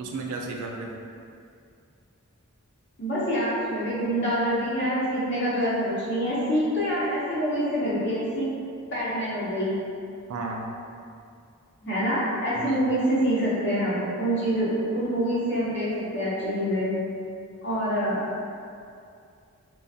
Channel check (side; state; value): both; normal; correlation 0.27